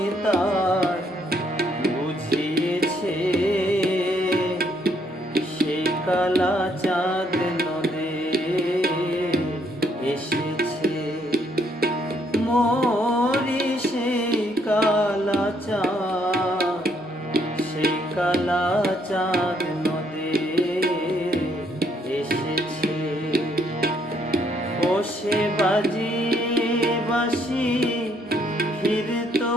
তার বুঝিয়েছে সে কালা চাঁদ নদে এসেছে মরি সেই কালা চাঁদ সেই কালা চাঁদ নদে এসেছে ও সে বাজিয়ে বাঁশি ফিরতো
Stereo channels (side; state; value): both; normal; correlation 0.69